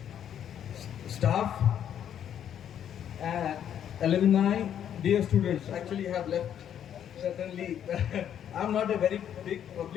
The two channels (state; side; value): quieter; right; 9.6 dB